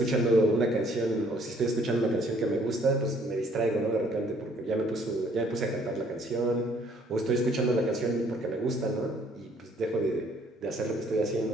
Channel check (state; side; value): normal; both; correlation 0.62